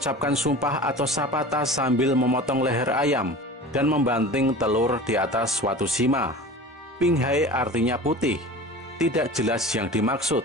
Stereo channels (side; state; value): both; normal; correlation 0.37